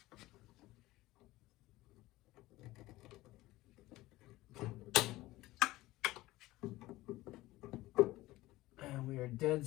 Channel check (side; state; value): right; quieter; 18.0 dB